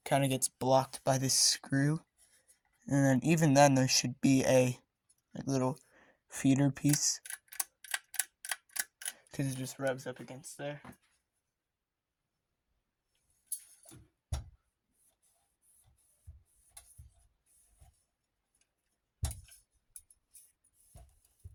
Kind of gets blocked by this screw, and then even then there should be a little feeder piece because it just rubs up against there.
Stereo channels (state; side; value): identical; both; correlation 1.00